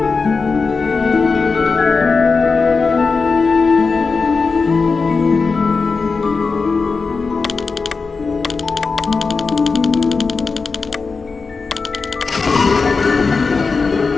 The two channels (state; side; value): quieter; right; 4.5 dB